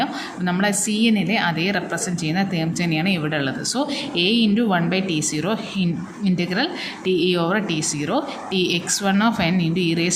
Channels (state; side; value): identical; both; correlation 1.00